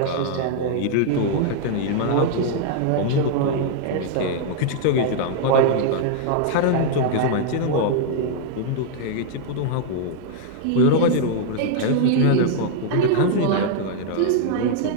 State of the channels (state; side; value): different; both; correlation -0.01